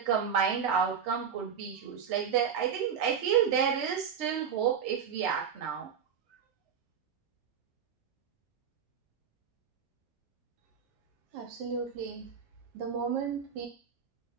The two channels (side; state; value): left; quieter; 7.5 dB